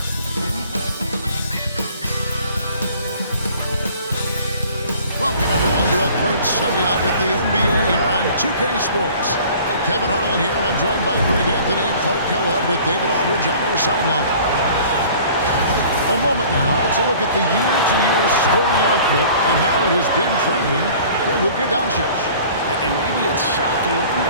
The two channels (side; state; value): both; inverted; correlation -0.49